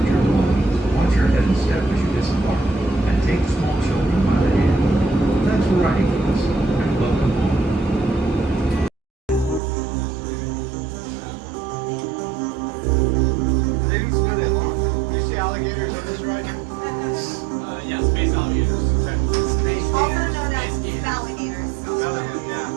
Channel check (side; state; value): left; drops out; at 9.6 s